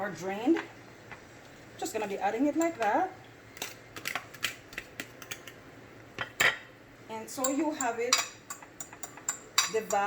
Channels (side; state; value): both; identical; correlation 1.00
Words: drained. Just going to be adding it like that. And so you have it